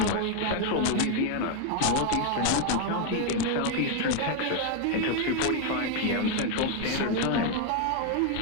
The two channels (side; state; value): both; different; correlation 0.01